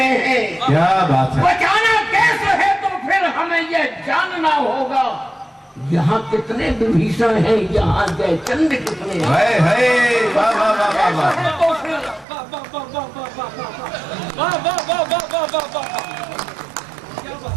हैं। क्या बात है। बचाना कैसे है तो फिर हमें यह जानना होगा। यहाँ कितने विभीषण हैं, यहाँ जयचंद कितने हैं। वाह वाह वाह वाह वाह। तो फिर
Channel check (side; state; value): left; drops out; at 12.2 s